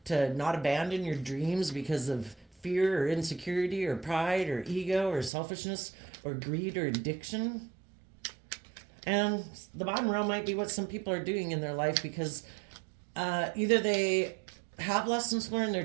to not abandon your dreams because of fear or insecurity or pride or ego or selfishness or greed or addiction. And the bottom row might be what some people are doing in their life because either they have lessons learned, they're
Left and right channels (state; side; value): drops out; left; at 5.3 s